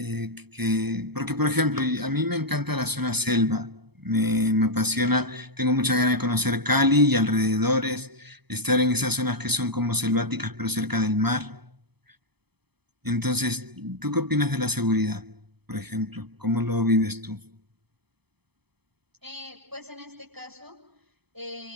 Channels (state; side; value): late; left; 0.98 ms